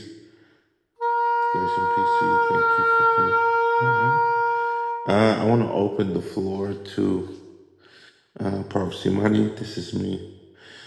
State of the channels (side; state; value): both; identical; correlation 1.00